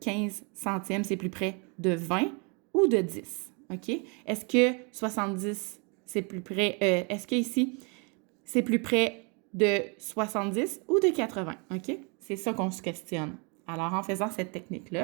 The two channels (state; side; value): quieter; left; 33.4 dB